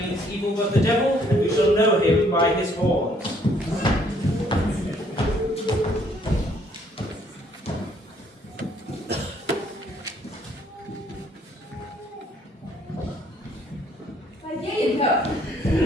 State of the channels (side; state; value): both; normal; correlation 0.65